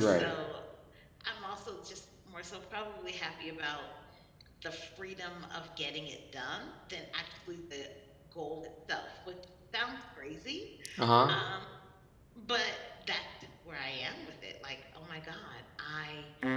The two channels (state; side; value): identical; both; correlation 1.00